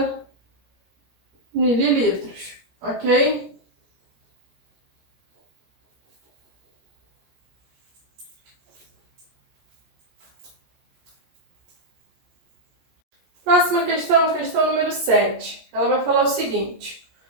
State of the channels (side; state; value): left; late; 17 ms